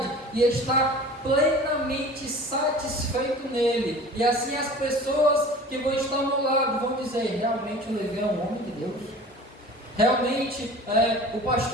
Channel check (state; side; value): normal; both; correlation 0.41